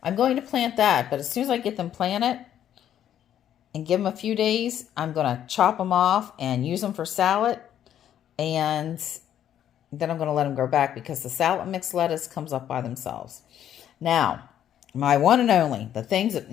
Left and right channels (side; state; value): right; quieter; 10.5 dB